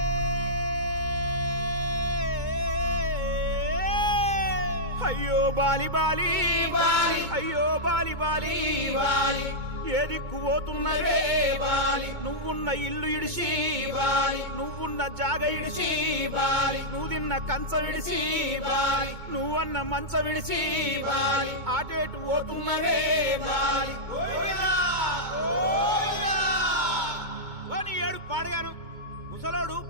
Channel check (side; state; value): left; late; 2.2 ms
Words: అయ్యో Bali Bali Bali అయ్యో Bali Bali Bali ఏ దిక్కు పోతున్నవే బాలి నువ్వున్న ఇల్లు ఇడిసి బాలి నువ్వున్న జాగ ఇడిసి బాలి నువ్వు తిన్న కంచం ఇడిసి బాలి నువ్వన్న మంచం ఇడిసి బాలి ఆటేటు పోతున్నవే బాలి ఏడు పాడగాను ముసలోడు